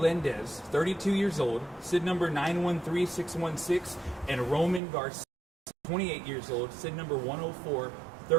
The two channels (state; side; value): drops out; left; at 4.8 s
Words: 32 years old, SID number 913616, and Roman Garcia, 28 years old, SID number